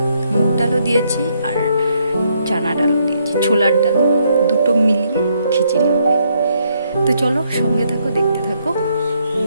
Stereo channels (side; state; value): both; inverted; correlation -0.73